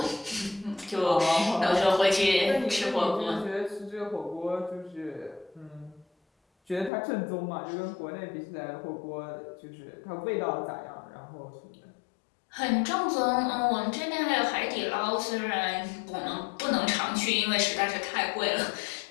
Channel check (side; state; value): right; drops out; at 6.9 s